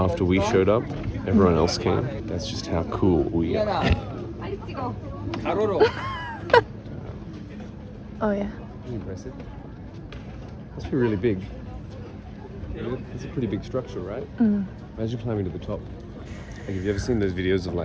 we showed up, everyone else came? That's just how cool we are. Oh, yeah. Impressive. Must be really big. It's a pretty big structure, right? Imagine climbing to the top. Like, have you ever seen those videos of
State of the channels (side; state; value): both; identical; correlation 1.00